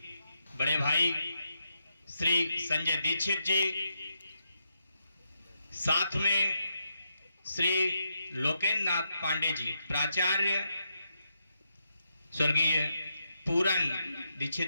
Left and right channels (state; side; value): inverted; both; correlation -0.83